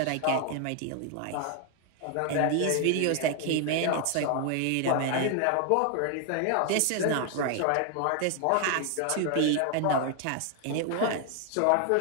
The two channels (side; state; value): both; different; correlation 0.00